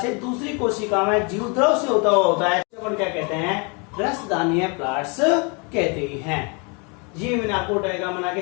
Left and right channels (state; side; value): quieter; right; 32.8 dB